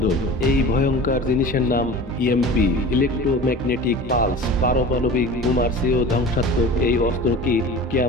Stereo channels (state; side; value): normal; both; correlation 0.37